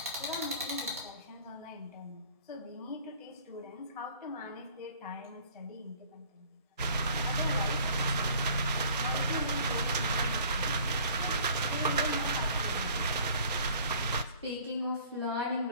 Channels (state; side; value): inverted; both; correlation -0.52